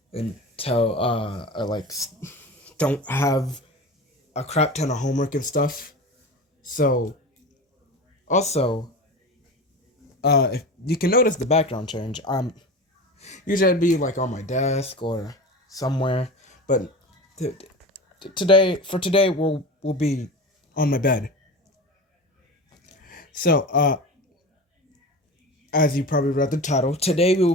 until I don't have a crap ton of homework and stuff. So, also, if you can notice the background change, usually I'd be on my desk or somewhere, but today we'll be on my bed. So, as you probably read the title, today we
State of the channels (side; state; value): both; normal; correlation 0.30